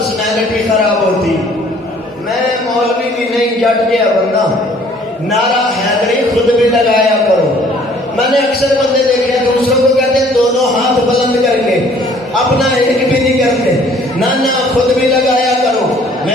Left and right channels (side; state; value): both; normal; correlation 0.57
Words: خراب ہوتی، میں مولوی بھی نہیں، جٹ گیا بندہ، نعرہ حیدری خود بھی لگایا کرو۔ میں نے اکثر بندے دیکھے دوسروں کو کہتے ہیں دونوں ہاتھ بلند کر کے، اپنا ایک بھی نہیں کرتے، نہ خود بھی لگایا کرو۔